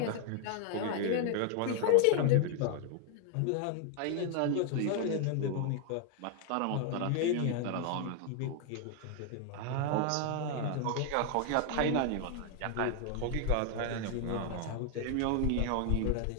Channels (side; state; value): both; different; correlation 0.00